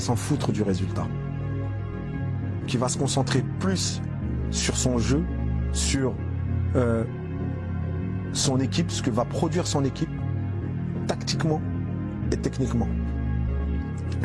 s'en foutre du résultat, qui va se concentrer plus sur son jeu, sur son équipe, ce que va produire son équipe, tactiquement et techniquement.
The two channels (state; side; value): identical; both; correlation 1.00